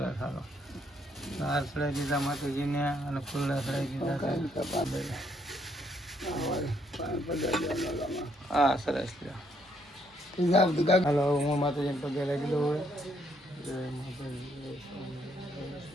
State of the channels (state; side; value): normal; both; correlation 0.71